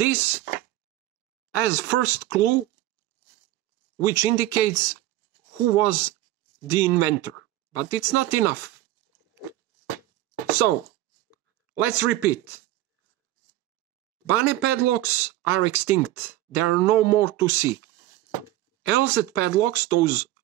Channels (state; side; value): quieter; left; 15.6 dB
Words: as first clue, which indicates who was the inventor. But it's not enough. So, let's repeat. Bane padlocks are extinct. There are no more to see. LZ padlocks, those